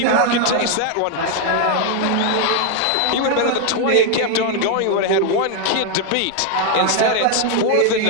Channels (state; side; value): different; both; correlation 0.00